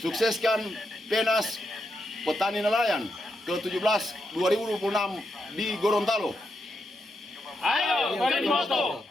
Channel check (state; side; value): normal; both; correlation 0.83